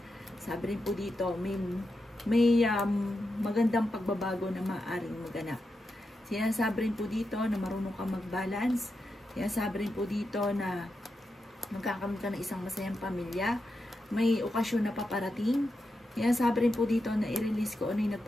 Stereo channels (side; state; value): both; normal; correlation 0.87